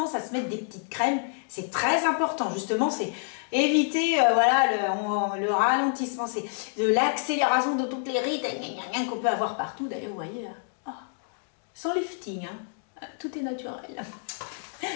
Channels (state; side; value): silent; right; digital silence